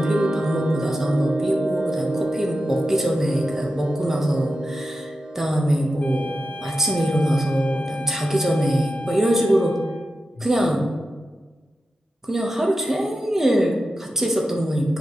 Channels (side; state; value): both; normal; correlation 0.91